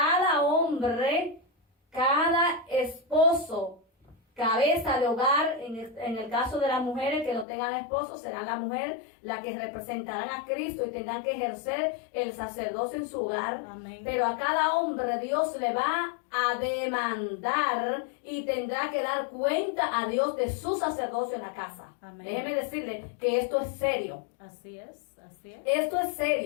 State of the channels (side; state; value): right; drops out; at 7.5 s